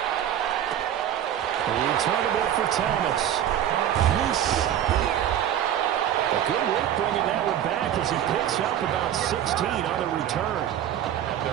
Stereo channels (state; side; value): quieter; left; 10.7 dB